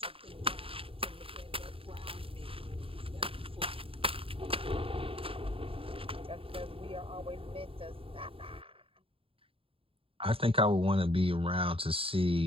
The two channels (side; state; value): left; late; 0.27 ms